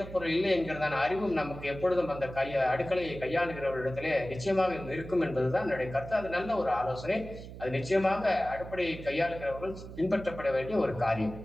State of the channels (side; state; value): right; noise; hum, 13 dB below the sound